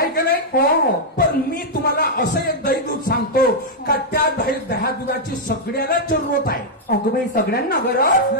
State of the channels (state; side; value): normal; both; correlation -0.04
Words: का नाही? हो हो. पण मी तुम्हाला असं एक दही दूध सांगतो का त्या दह्या दुधाची सगळ्याला जरूरत आहे. अगं बाई सगळ्यांना गरज.